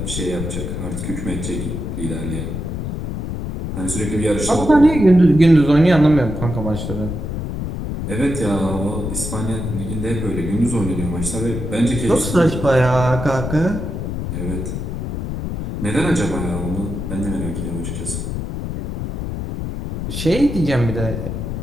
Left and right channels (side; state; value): left; noise; rumble, 4 dB below the sound